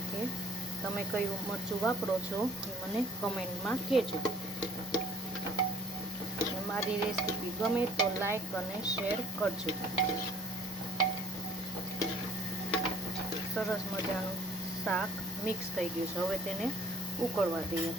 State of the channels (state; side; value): normal; both; correlation 0.56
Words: તમે કયું મરચું વાપરો છો એ મને કમેન્ટમાં કહેજો। મારી રેસીપી ગમે તો લાઈક અને શેર કરજો। સરસ મજાનું શાક મિક્સ થઈ ગયું છે। હવે તેને ઉકળવા દઈએ